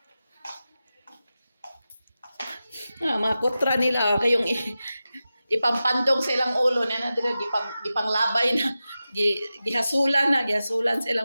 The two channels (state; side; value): inverted; both; correlation -0.93